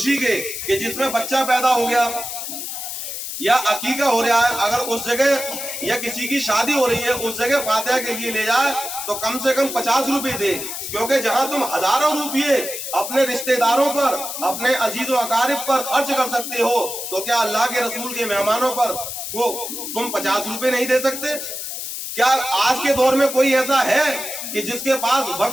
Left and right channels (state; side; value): noise; left; hiss, 6 dB below the sound